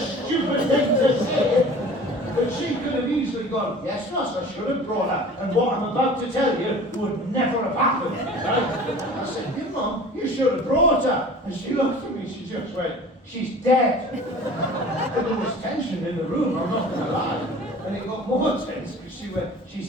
thing to say, but she could have easily gone, yes, Ross, I should have brought her, and what I'm about to tell you would never have happened, right? I said, your mum, you should have brought her. And she looked at me, she just went, she's dead. And there was tension in the room, I'm not going to lie. And it got more tense because she went,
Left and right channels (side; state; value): both; normal; correlation 0.43